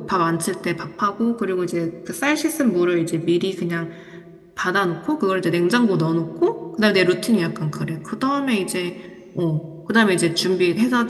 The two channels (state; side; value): identical; both; correlation 1.00